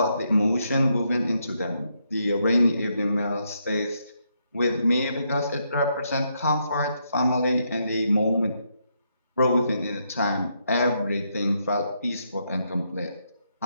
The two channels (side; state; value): both; inverted; correlation -0.78